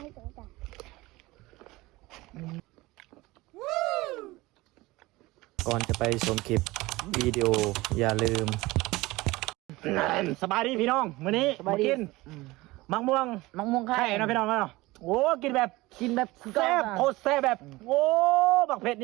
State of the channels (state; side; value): quieter; left; 20.4 dB